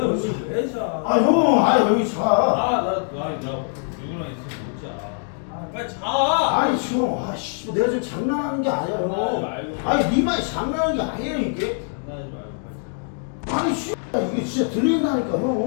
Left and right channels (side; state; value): right; silent; 55 dB below the other